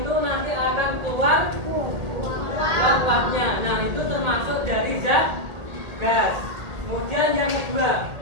nanti akan keluar uap-uapnya. Nah, itu termasuk dari zat gas. Kemudian yang kedua,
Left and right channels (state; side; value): late; left; 1.8 ms